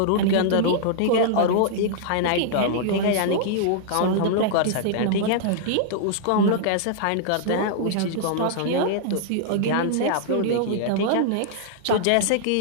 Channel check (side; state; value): both; different; correlation -0.01